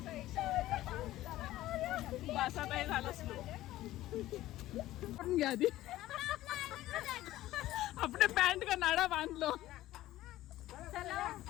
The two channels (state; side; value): quieter; right; 15.3 dB